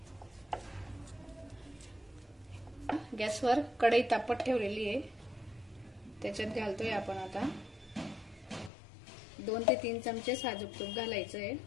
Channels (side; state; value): right; drops out; at 8.7 s